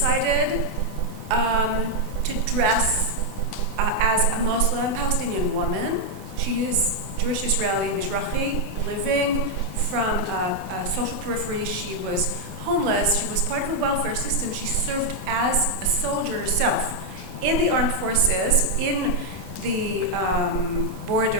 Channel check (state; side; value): normal; both; correlation 0.00